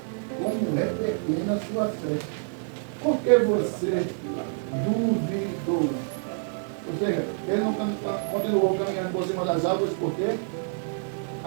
como é pequena a sua fé, por que você duvidou? Ou seja, ele não continuou caminhando por cima das árvores porque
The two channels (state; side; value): silent; left; 60 dB below the other